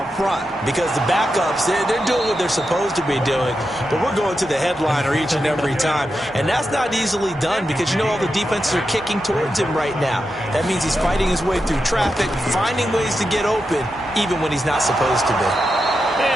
front because the backups, they're doing what they're supposed to be doing, but we're going to the headliner each and every time. And that's not easily done because, you know, all the defenses are kicking towards him right now. That means he's fighting his way through traffic, finding ways to get open, even when he's not supposed to be.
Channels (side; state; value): both; normal; correlation 0.88